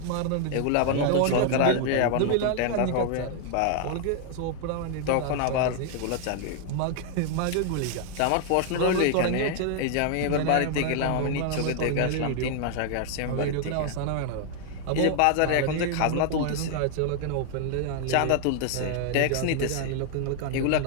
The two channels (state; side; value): different; both; correlation 0.00